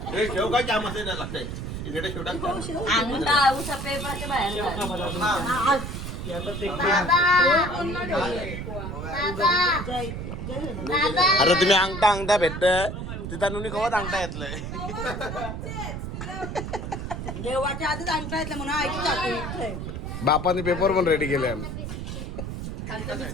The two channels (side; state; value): right; noise; rumble, 6 dB below the sound